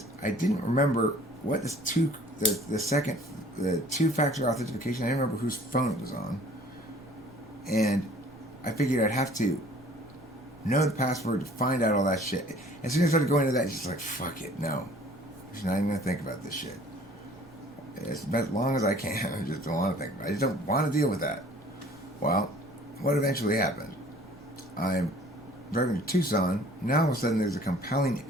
I didn't remember what the two-factor authentication. I didn't remember whose phone it was on. And I figured I'd have to know the password to find out all that shit. As soon as I started going into that, it's just like, fuck it, no. I'm not even going to think about this shit. as long as I can. I just don't want to think about it. I just don't want to deal with that. Well, what eventually happened? I'm driving to Tucson. Now all of a sudden there's a compelling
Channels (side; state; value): right; noise; rumble, 30 dB below the sound